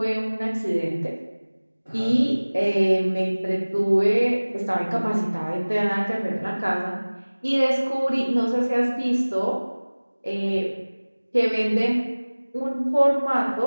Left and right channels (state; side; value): inverted; both; correlation -1.00